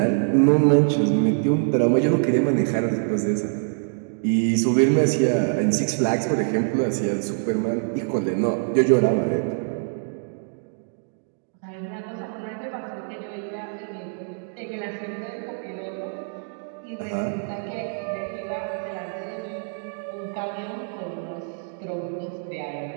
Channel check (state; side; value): silent; left; 62 dB below the other